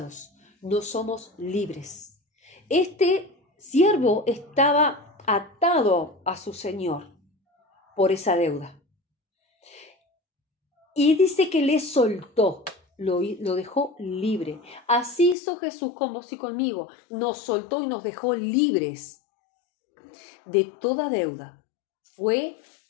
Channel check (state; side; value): drops out; right; at 15.4 s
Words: no somos libres. Este siervo estaba atado a su señor por esa deuda. Y dice que le soltó, lo dejó libre. Así hizo Jesús con vos y conmigo. Nos soltó y nos dejó libres de toda deuda. Fue